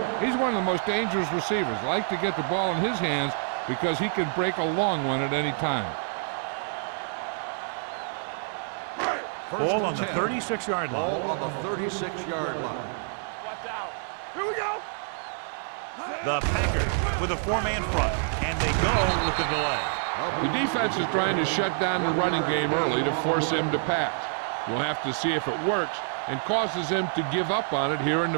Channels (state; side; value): silent; left; digital silence